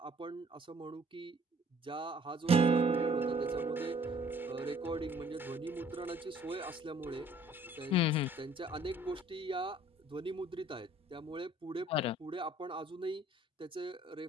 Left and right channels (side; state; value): both; normal; correlation 0.57